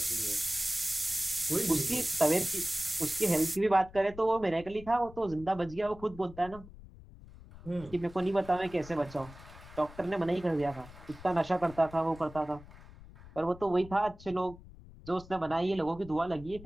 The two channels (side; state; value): left; noise; rumble, 18 dB below the sound